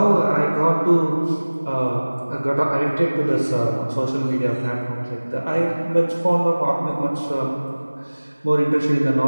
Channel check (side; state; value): both; inverted; correlation -1.00